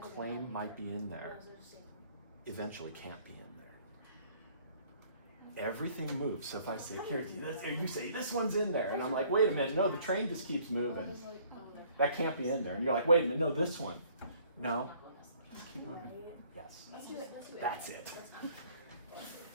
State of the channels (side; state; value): both; inverted; correlation -0.59